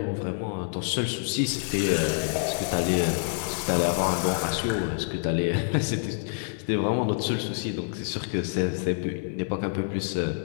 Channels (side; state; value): right; silent; 60 dB below the other